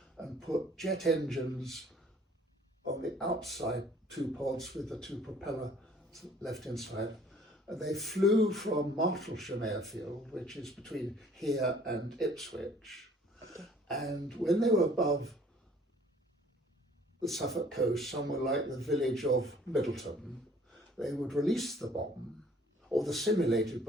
and put jet engines on the outside 2 pods with the 2 propellers left inside. And they flew from Martlesham Airfield, which is between here and Ipswich. And when they were above the Suffolk coast, somewhere like the village of Middleton, they would release the bomb, or the simulated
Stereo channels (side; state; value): both; normal; correlation 0.56